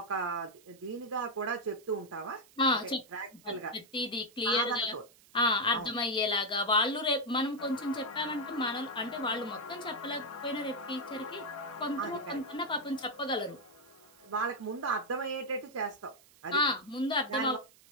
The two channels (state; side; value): noise; right; hiss, 26 dB below the sound